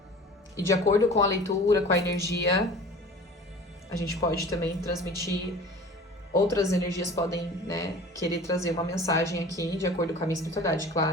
E de acordo com a leitura, com a energia, a gente pode também transmitir. Outras energias podem, né, querer trazer uma mensagem aqui, de acordo com a minha espiritualidade,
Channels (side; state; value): both; normal; correlation 0.42